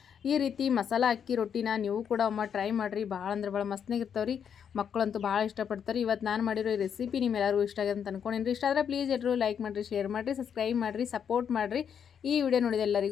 ಈ ರೀತಿ ಮಸಾಲ ಅಕ್ಕಿ ರೊಟ್ಟಿನ ನೀವು ಕೂಡ ಒಮ್ಮೆ ಟ್ರೈ ಮಾಡಿರಿ. ಭಾಳ ಅಂದ್ರೆ ಭಾಳ ಮಸ್ತ್ನಾಗಿರ್ತಾವ್ರಿ. ಮಕ್ಕಳಂತೂ ಭಾಳ ಇಷ್ಟಪಡ್ತಾರೆ. ಇವತ್ತು ನಾನು ಮಾಡಿರೋ ಈ ರೆಸಿಪಿ ನಿಮ್ಮೆಲ್ಲರಿಗೂ ಇಷ್ಟ ಆಗಿದೆ ಅಂತ ಅನ್ಕೊಂಡಿನಿ. ಇಷ್ಟ ಆದರೆ ಪ್ಲೀಸ್ ಎಲ್ಲರೂ ಲೈಕ್ ಮಾಡಿರಿ, ಶೇರ್ ಮಾಡಿರಿ, ಸಬ್ಸ್ಕ್ರೈಬ್ ಮಾಡಿರಿ, ಸಪೋರ್ಟ್ ಮಾಡಿರಿ. ಈ ವಿಡಿಯೋ ನೋಡಿದ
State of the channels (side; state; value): right; quieter; 7.9 dB